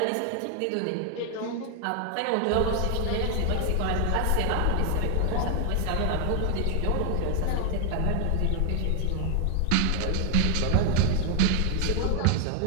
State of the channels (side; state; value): both; different; correlation 0.00